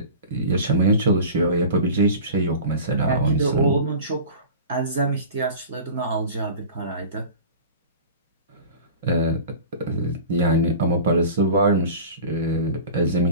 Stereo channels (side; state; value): both; inverted; correlation -0.37